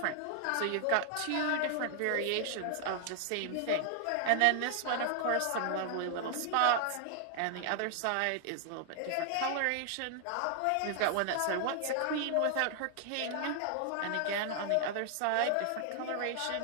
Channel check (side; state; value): both; different; correlation 0.00